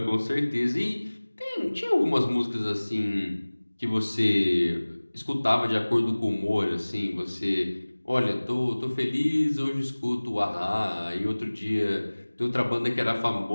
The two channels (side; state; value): both; inverted; correlation -1.00